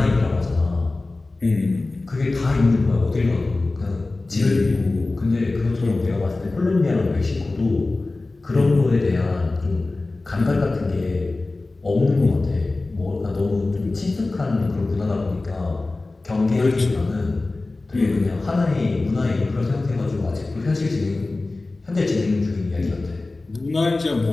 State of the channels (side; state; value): right; quieter; 3.2 dB